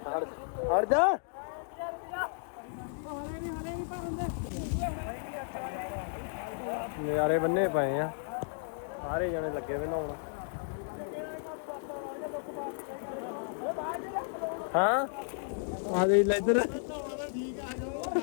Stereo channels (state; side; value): silent; right; digital silence